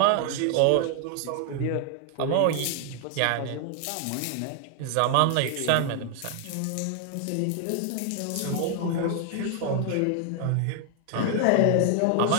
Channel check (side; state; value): both; different; correlation 0.00